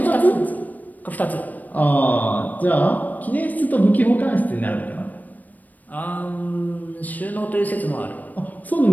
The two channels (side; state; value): right; late; 0.081 ms